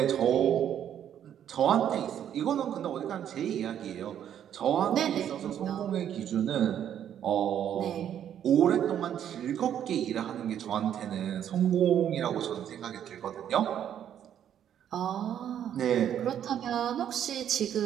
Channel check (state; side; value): quieter; left; 9.9 dB